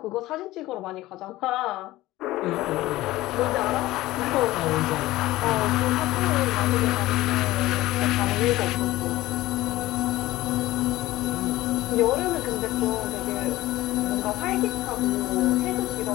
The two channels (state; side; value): quieter; right; 17.3 dB